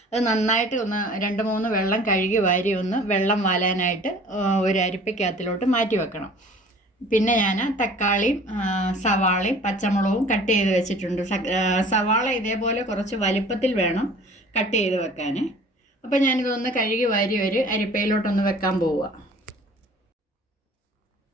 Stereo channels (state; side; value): normal; both; correlation 0.48